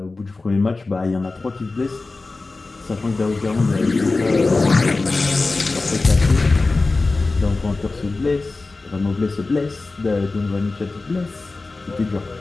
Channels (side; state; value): right; quieter; 3.5 dB